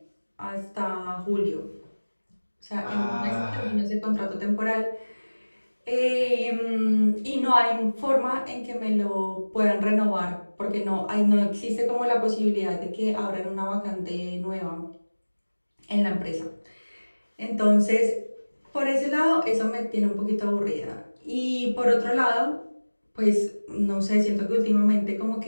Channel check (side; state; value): both; inverted; correlation -1.00